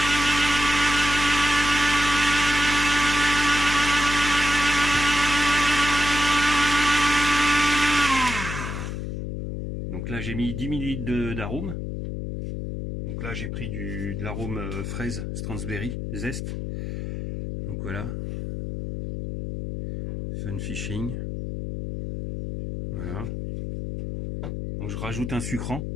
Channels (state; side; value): noise; left; hum, 5 dB below the sound